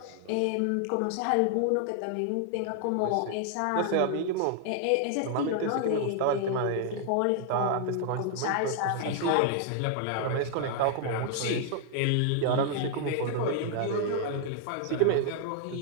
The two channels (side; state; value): both; different; correlation 0.00